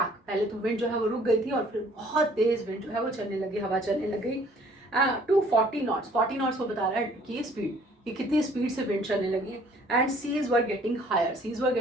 पहले तो विंड जो है वो रुक गई थी और फिर बहुत तेज विंड जो है वो चलने लगी, हवा चलने लगी टू 40 knots। 40 knots वो बता रहा है कि स्पीड, कि कितनी स्पीड से विंड चलने लगी। And seas were getting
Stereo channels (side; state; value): both; normal; correlation 0.57